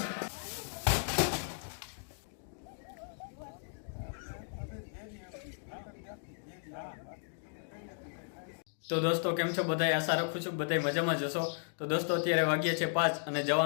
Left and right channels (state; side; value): silent; right; digital silence